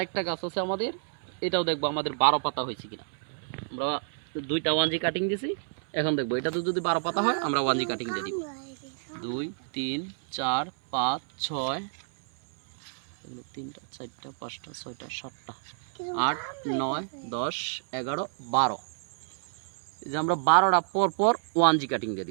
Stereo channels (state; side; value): silent; left; 59 dB below the other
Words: গাছ আছে আমাদের, এটাও দেখবো আমাদের 12 পাতা হয়েছে কিনা। আমরা 2টা 1G কাটিং দিছি, এখন দেখবো এটা তো যদি 12 পাতা হয় আমরা 1G কাটিং দিয়ে দিব। 2 3 4 5 6, 3টা 4টা 5টা 6টা 7টা 8 9 10 11 12, এই যে আমরা 12টা পর পর 1G কাটিং দিয়ে